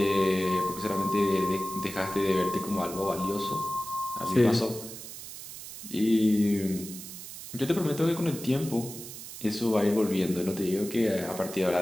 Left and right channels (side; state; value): right; noise; hiss, 12 dB below the sound